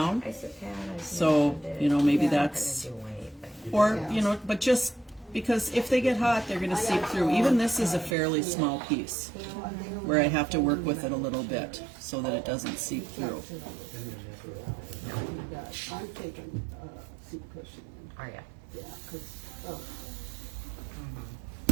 I said, Pat, So, maybe that's, do anything. or, but just, because if they get hot, they're gonna seep through. Even this is a fairly small piece, where I have to work with it a little bit, so that it doesn't seep through. I'm taking seat cushion. Are ya? Yeah, because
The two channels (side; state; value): left; drops out; at 8.2 s